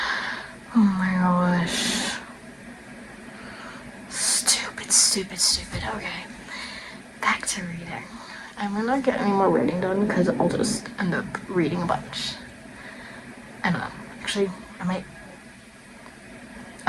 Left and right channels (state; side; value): identical; both; correlation 1.00